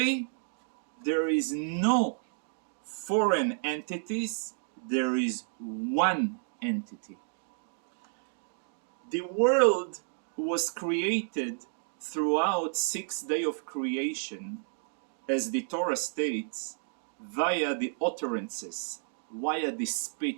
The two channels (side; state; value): left; silent; digital silence